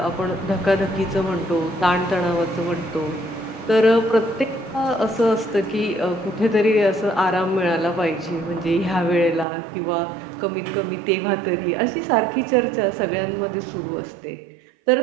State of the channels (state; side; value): drops out; left; at 9.5 s